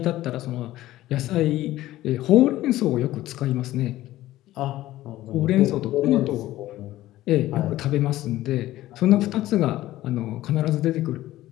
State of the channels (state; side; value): quieter; right; 15.4 dB